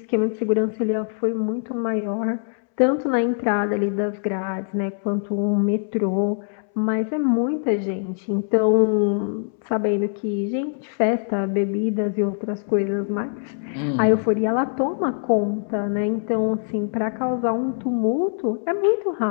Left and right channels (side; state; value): right; silent; 63 dB below the other